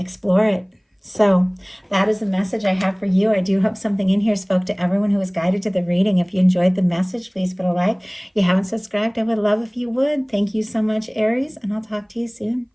it. So that is the message I have for you. I do hope something in here spoke to everyone who was guided to the reading. If you enjoyed the message, please put a like. If you haven't subscribed, I would love if you would. Thank you so much, Aries, and I'll talk to you soon.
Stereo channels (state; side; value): identical; both; correlation 1.00